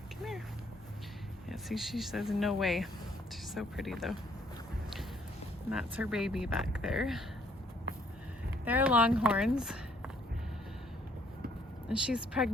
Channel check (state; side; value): normal; both; correlation 0.65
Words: here. Yeah, see, she says no way. She's so pretty though. And that's her baby back there. They're Longhorns. And she's